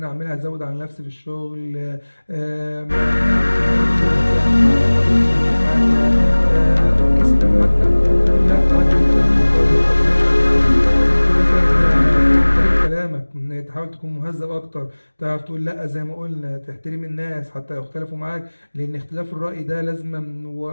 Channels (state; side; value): inverted; both; correlation -1.00